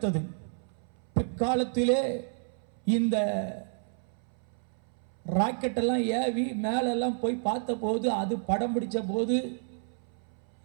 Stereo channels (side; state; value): left; silent; 58 dB below the other